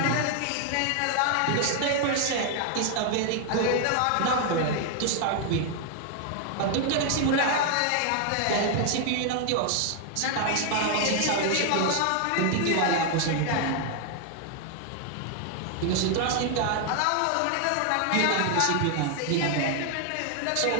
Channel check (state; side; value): different; both; correlation 0.00